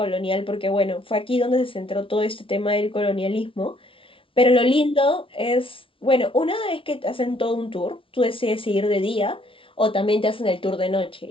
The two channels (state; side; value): late; right; 0.25 ms